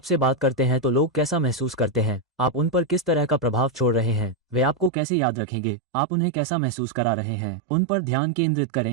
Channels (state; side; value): drops out; left; at 4.9 s